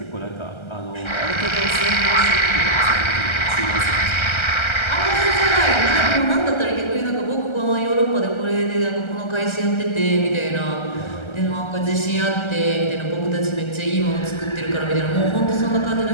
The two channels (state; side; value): late; right; 1.3 ms